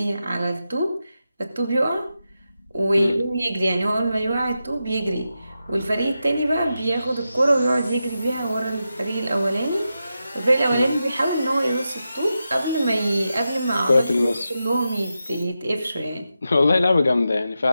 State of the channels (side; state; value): both; inverted; correlation -0.89